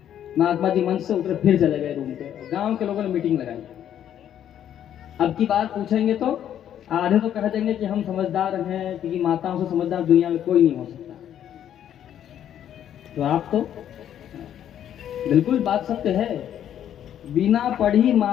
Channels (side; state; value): right; quieter; 10.3 dB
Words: महात्मा जी मंच से उतरे, फिर चले गए रूम पे। गांव के लोगों ने मीटिंग लगाई। अब की बात पूछेंगे तो आधे तो कह देंगे कि हम समझदार हैं, क्योंकि माताओं से समझदार दुनिया में कोई नहीं हो सकता। तो आप तो बिल्कुल बात सत्य है। बिना पढ़ी